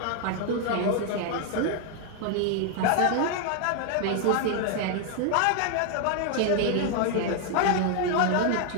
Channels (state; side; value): different; both; correlation 0.00